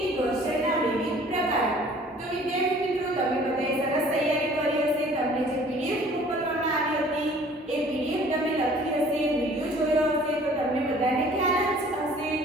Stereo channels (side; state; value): both; normal; correlation 0.52